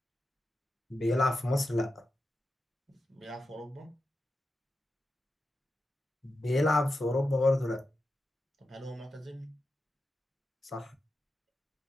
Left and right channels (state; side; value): normal; both; correlation 0.90